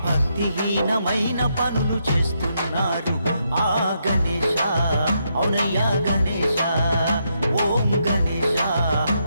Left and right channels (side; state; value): both; inverted; correlation -0.79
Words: భక్తిహీనమైన పనులు చేస్తున్నారు ఆ గణేశ అవునయ్యా గణేశ ఓం గణేశ